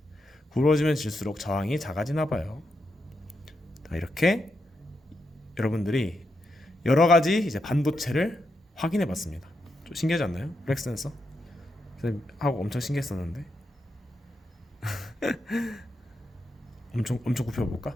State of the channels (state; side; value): normal; both; correlation 0.84